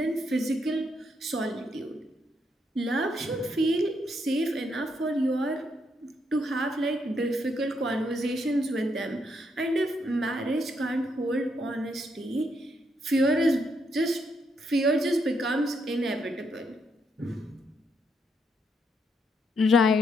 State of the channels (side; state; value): both; normal; correlation 0.77